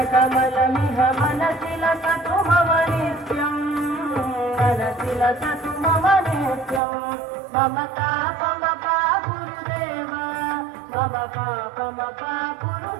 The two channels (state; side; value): drops out; left; at 6.8 s